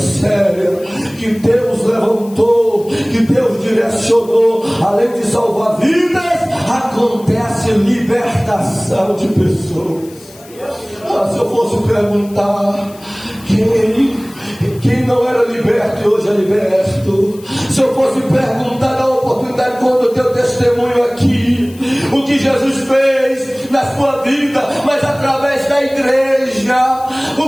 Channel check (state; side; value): noise; left; hiss, 23 dB below the sound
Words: que Deus levantou, que Deus direcionou, além de salvar vidas, acontece libertação de pessoas. Se eu fosse perguntar quem não era liberto e hoje é liberto, se eu fosse perguntar na oportunidade, quando o teu testemunho aqui, o que Jesus fez na sua vida, mas através da igreja,